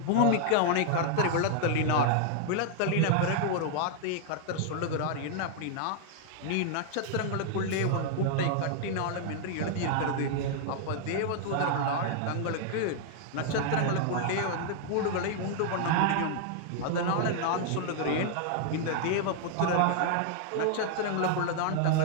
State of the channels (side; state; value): both; different; correlation 0.00